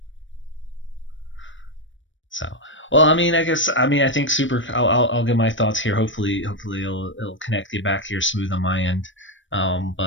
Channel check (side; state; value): right; late; 0.56 ms